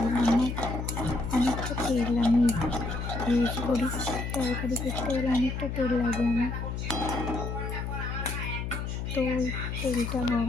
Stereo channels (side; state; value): left; noise; hum, 4 dB below the sound